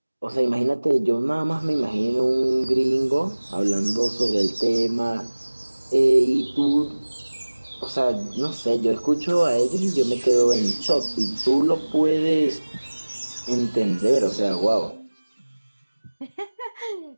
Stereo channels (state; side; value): inverted; both; correlation -1.00